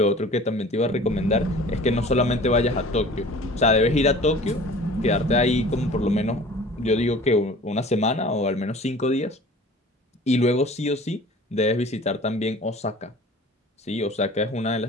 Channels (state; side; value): normal; both; correlation 0.44